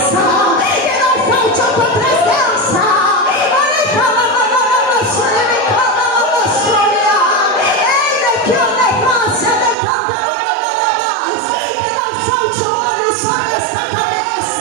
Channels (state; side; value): drops out; left; at 9.8 s